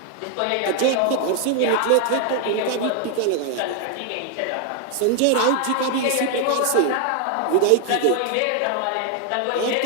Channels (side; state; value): both; different; correlation 0.00